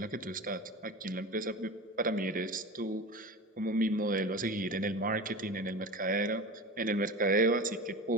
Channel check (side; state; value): both; normal; correlation 0.30